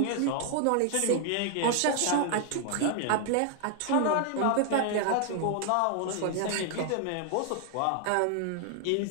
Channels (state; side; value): different; both; correlation 0.00